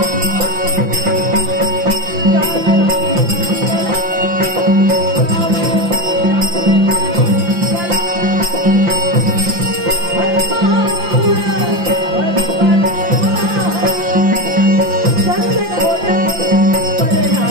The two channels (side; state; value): left; late; 5.8 ms